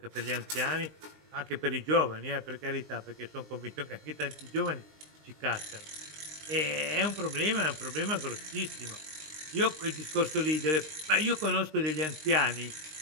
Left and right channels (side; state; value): left; late; 19 ms